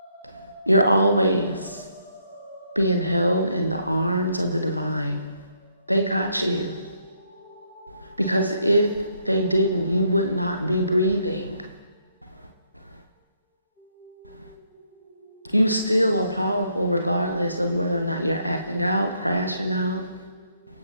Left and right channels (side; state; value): both; inverted; correlation -0.73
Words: You're always being held in the arms of the divine. They got you. Because if they didn't, you would not be breathing. You still are powerful regardless of whether or not you're acting out, crashing out.